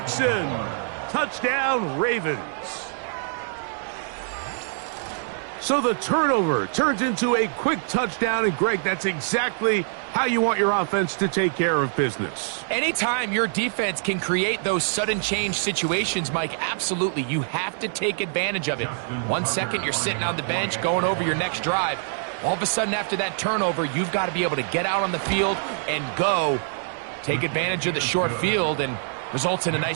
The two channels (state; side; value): silent; left; digital silence